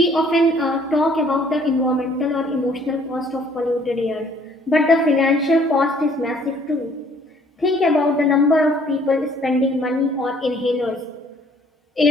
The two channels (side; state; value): both; normal; correlation 0.59